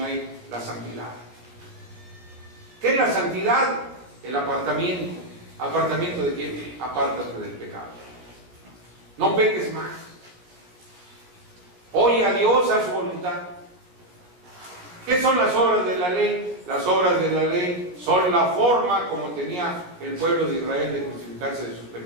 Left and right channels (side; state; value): left; late; 17 ms